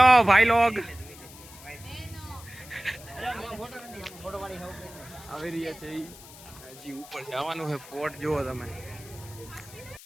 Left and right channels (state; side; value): noise; left; hiss, 18 dB below the sound